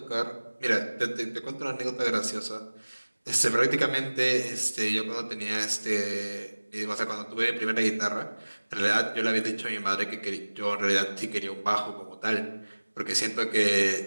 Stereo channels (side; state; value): both; inverted; correlation -1.00